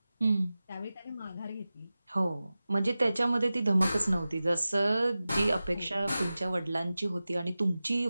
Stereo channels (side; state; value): both; inverted; correlation -0.96